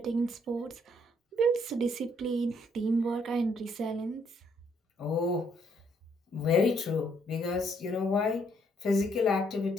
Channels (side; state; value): both; normal; correlation 0.69